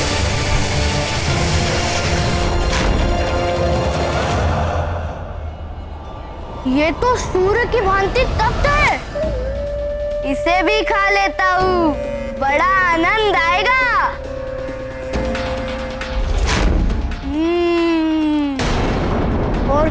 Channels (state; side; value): identical; both; correlation 1.00